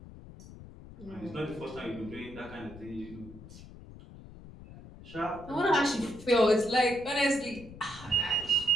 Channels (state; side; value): noise; left; rumble, 17 dB below the sound